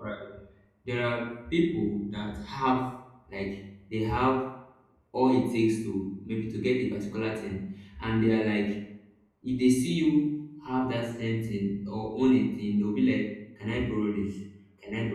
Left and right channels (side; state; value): both; identical; correlation 1.00